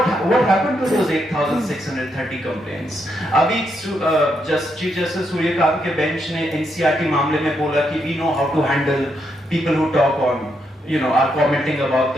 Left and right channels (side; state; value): both; normal; correlation 0.79